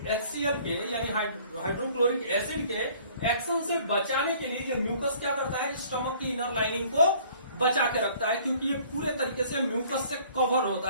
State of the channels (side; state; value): both; inverted; correlation -0.55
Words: HCl के यानी हाइड्रोक्लोरिक एसिड के एक्शन से बचाने के लिए ये म्यूकस क्या करता है, स्टमक की इनर लाइनिंग को बचा के रखता है, क्योंकि ये पूरे तरीके से म्यूकस से कवर